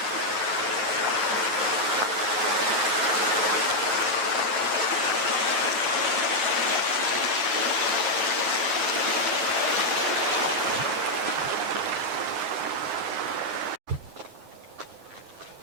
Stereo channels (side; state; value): left; late; 9.5 ms